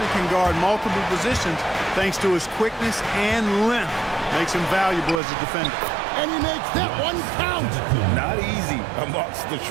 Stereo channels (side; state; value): left; drops out; at 5.2 s